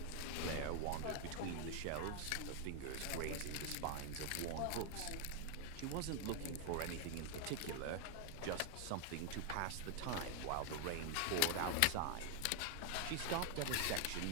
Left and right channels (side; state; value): both; different; correlation 0.00